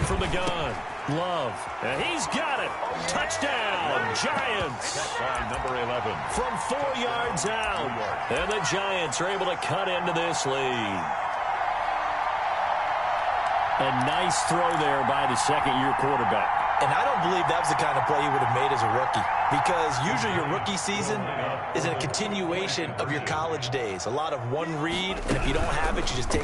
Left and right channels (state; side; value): identical; both; correlation 1.00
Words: the gun, Love, and he's got it. Touchdown, Giants. By number 11. From 4 yards out, and the Giants are able to cut into this lead. A nice throw there by the second-year quarterback. And I don't believe that was the kind of play he would have made as a rookie, because usually your rookie season is a continuation of your college days. A lot of one read, and if you don't have it, you just